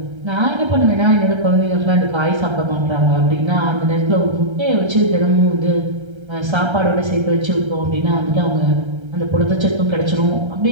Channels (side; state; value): left; late; 1.3 ms